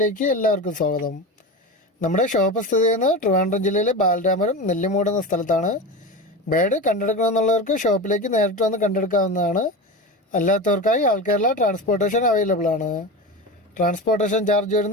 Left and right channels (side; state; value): both; normal; correlation 0.25